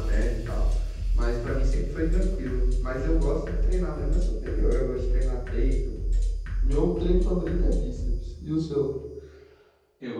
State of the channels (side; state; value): both; identical; correlation 1.00